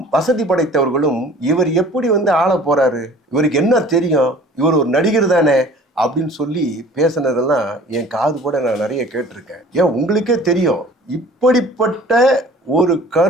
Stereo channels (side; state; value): both; normal; correlation 0.48